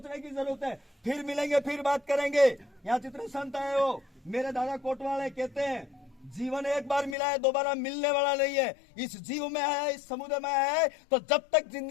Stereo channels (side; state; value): right; drops out; at 7.2 s